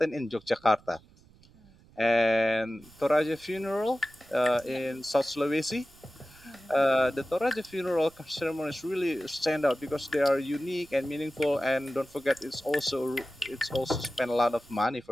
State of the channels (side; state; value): right; noise; rumble, 27 dB below the sound